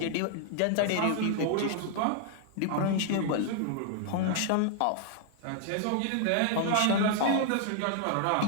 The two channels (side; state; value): both; different; correlation 0.00